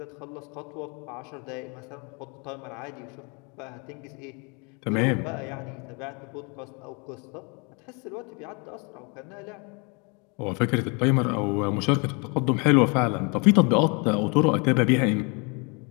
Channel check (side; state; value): right; quieter; 32.4 dB